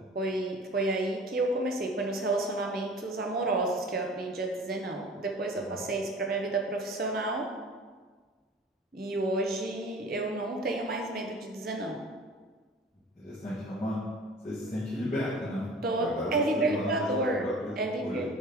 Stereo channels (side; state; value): both; normal; correlation 0.43